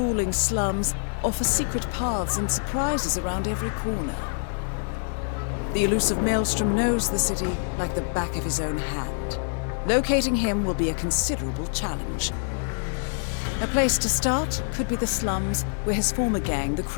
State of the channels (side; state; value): right; silent; digital silence